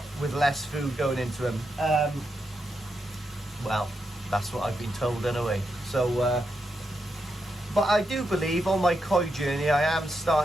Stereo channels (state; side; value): normal; both; correlation 0.84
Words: with less food going into them. Well, that's what I've been told anyway. So but I do believe on my koi journey I am